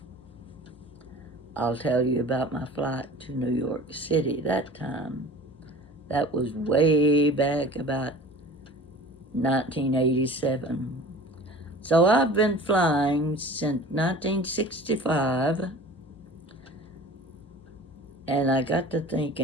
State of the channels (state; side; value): normal; both; correlation 0.41